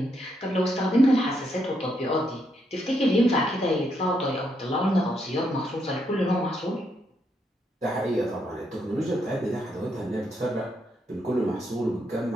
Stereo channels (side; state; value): both; normal; correlation 0.78